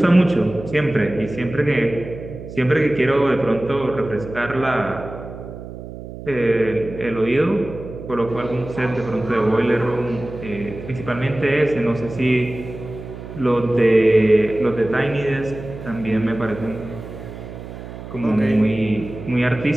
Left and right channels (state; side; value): noise; right; hum, 12 dB below the sound